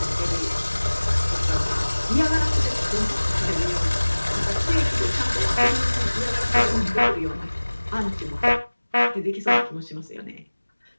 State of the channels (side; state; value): both; inverted; correlation -1.00